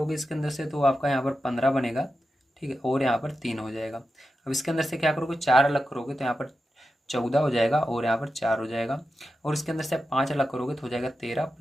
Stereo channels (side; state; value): both; normal; correlation 0.90